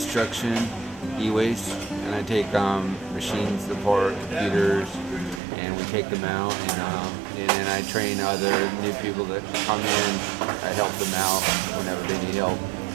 e-waste, and I take machines apart, computers, and we take them out, and then I train other new people that come in. I help them out whenever they need help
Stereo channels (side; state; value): left; drops out; at 5.4 s